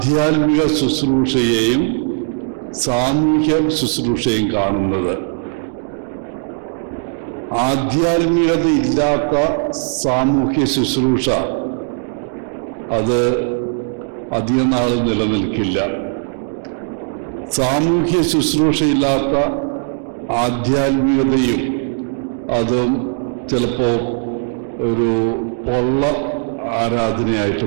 ശുശ്രൂഷയെയും സാമൂഹ്യ ശുശ്രൂഷയും കാണുന്നത്. ആധ്യാത്മികത ഇല്ലാത്ത സാമൂഹ്യ ശുശ്രൂഷ അത് അധികം നാൾ നിലനിൽക്കില്ല. സാമൂഹ്യ ശുശ്രൂഷയില്ലാത്ത ആധ്യാത്മികതയും അതും ചിലപ്പോൾ ഒരു പൊള്ള ആരാധനയായിട്ട്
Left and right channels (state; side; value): silent; left; digital silence